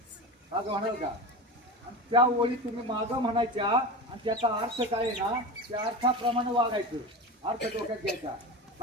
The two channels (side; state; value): both; normal; correlation 0.26